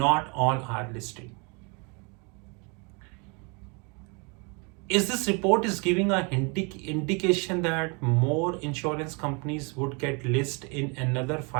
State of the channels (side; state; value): left; quieter; 32.3 dB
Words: all are listed. Is this report is giving a indication that more insurance companies would get listed in another